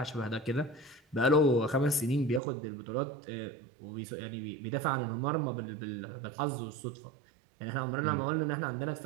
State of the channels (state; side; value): drops out; left; at 2.4 s